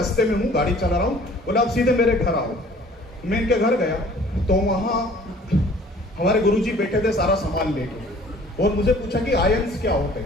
में हूँ, गाड़ी चला रहा हूँ। बोला आप सीधे मेरे घर आओ। मैं इनके घर गया तो वहाँ हमारे गुरुजी बैठे थे सारा सामान लेके, और मुझे पूछा कि आयंस क्या होते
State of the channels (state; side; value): normal; both; correlation 0.52